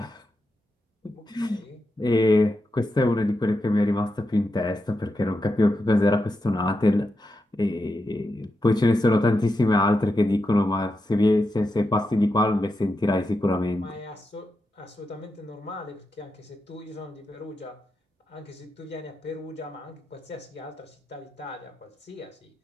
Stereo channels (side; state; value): both; normal; correlation 0.87